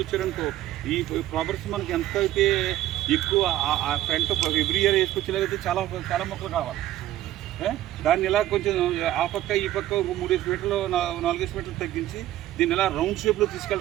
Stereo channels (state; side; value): quieter; left; 14.1 dB